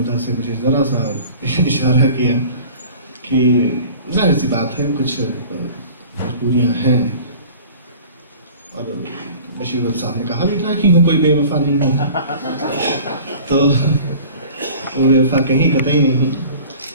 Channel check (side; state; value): both; inverted; correlation -0.44